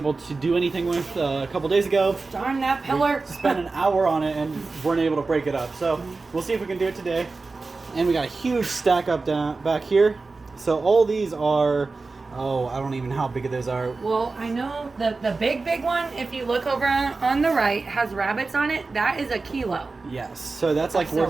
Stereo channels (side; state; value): left; quieter; 3.8 dB